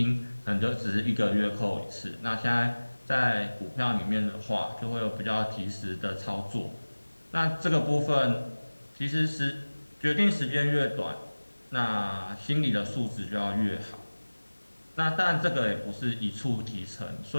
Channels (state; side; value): inverted; both; correlation -1.00